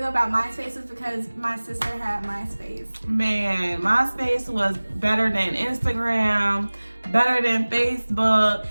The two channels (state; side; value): inverted; both; correlation -1.00